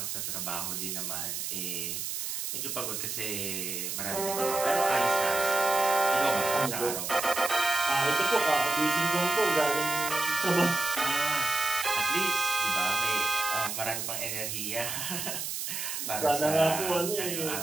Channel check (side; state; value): right; noise; hiss, 4 dB below the sound